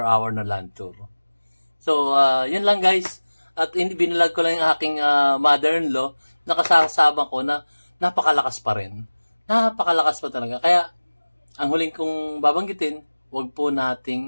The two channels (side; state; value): both; inverted; correlation -1.00